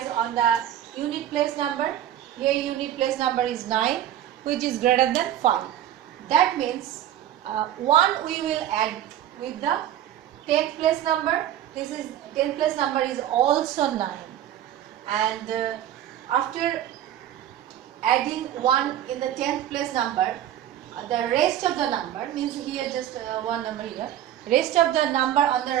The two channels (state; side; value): quieter; left; 11.5 dB